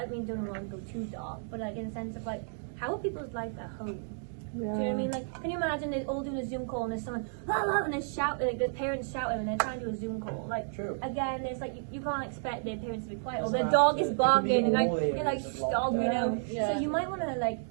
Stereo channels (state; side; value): silent; left; digital silence